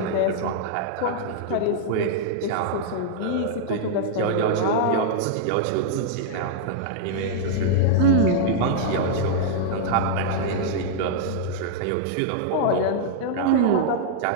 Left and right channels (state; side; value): different; both; correlation -0.02